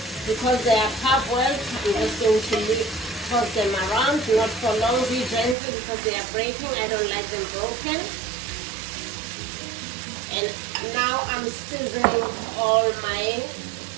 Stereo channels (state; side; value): drops out; left; at 5.6 s